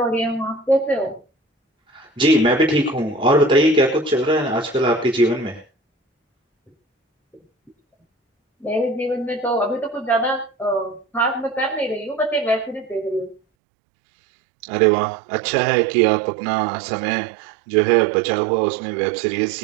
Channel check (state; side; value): drops out; left; at 13.4 s